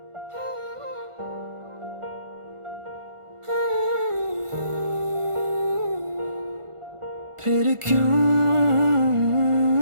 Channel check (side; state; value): left; late; 1.4 ms